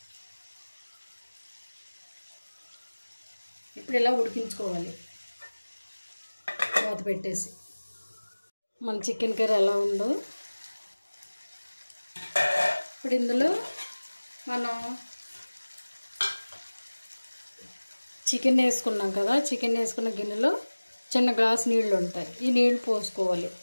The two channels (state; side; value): inverted; both; correlation -1.00